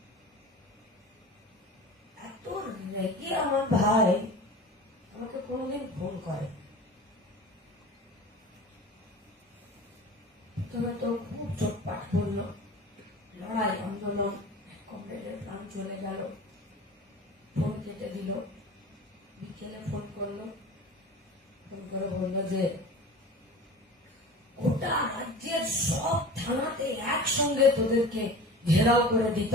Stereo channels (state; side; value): normal; both; correlation 0.37